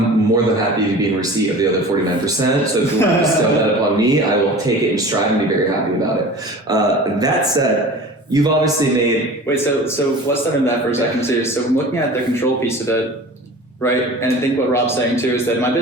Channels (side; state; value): both; normal; correlation 0.39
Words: more than happy to be in receipt of the other 49%. So if you want to bestow that upon me, I will take it in stride and be very happy about it. That said, you've obviously made... Wait, so let's start in that for a second too. So I'm looking at the control piece of it, right? And I think what Rob's saying too is that in my